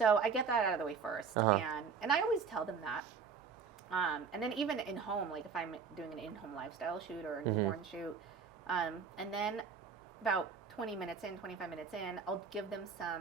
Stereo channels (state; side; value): quieter; left; 5.8 dB